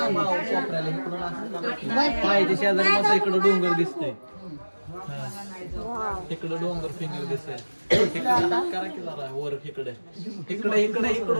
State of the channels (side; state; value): both; inverted; correlation -1.00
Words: शेजारी मस्त इकडं डोंगर दिसतंय, इकडं डोंगर फिंगर दिसतंय. करा की जरा वर इकडे इकडे इकडे